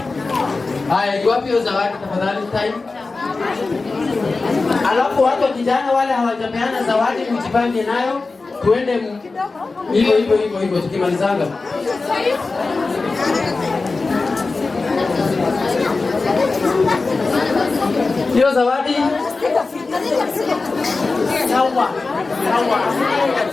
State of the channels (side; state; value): right; quieter; 3.8 dB